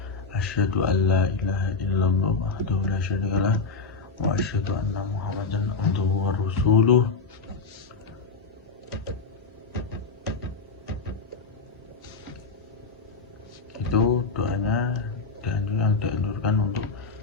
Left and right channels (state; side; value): quieter; right; 4.3 dB